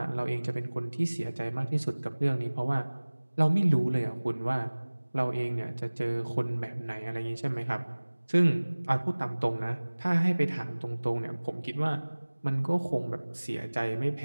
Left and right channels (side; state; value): both; inverted; correlation -1.00